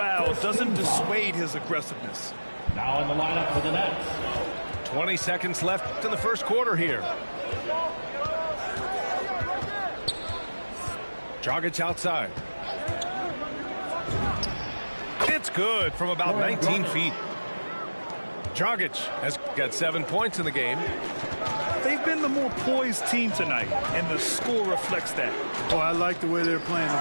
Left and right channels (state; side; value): inverted; both; correlation -1.00